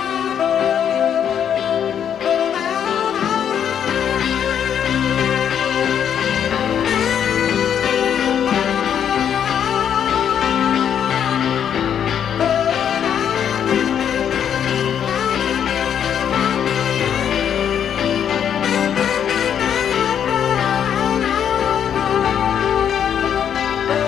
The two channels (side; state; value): right; quieter; 8.8 dB